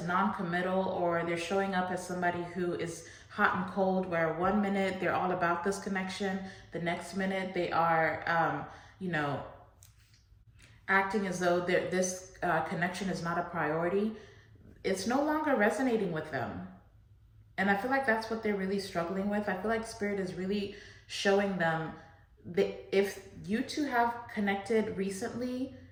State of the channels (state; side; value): identical; both; correlation 1.00